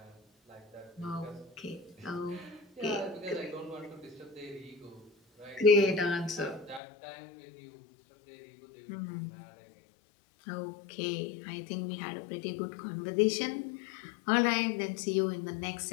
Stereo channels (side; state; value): right; drops out; at 6.8 s